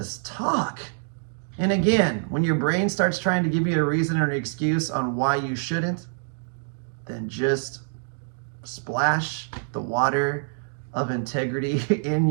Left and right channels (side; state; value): left; silent; 61 dB below the other